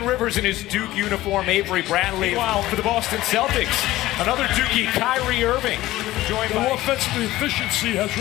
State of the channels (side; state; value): right; quieter; 16.5 dB